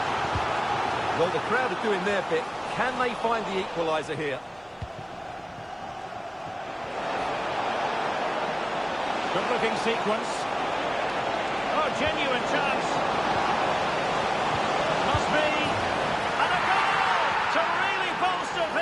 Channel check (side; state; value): both; identical; correlation 1.00